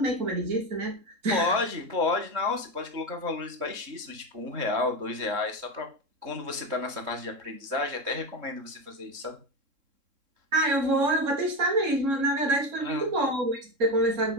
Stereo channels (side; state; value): left; late; 3.7 ms